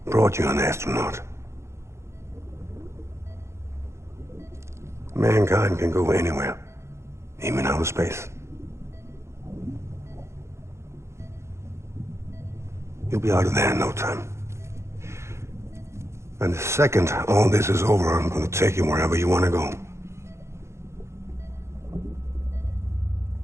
Brought you an astronaut. Mankind can go anywhere, even outer space. You'll be out of there in no time. And the second all this is over, I'm gonna take you wherever you want to go.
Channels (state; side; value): late; left; 0.13 ms